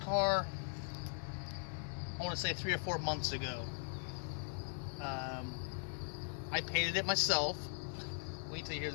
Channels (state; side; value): silent; right; digital silence